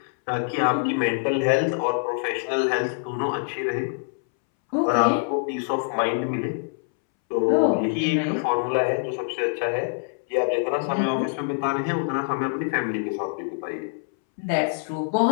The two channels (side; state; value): right; silent; 62 dB below the other